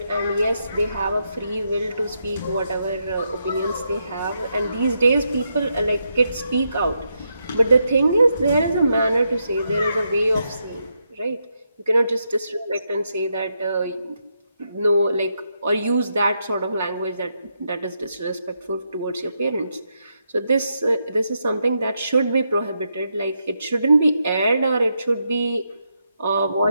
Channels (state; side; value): inverted; both; correlation -0.82